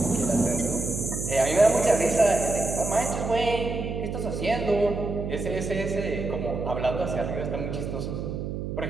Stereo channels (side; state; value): right; noise; hum, 5 dB below the sound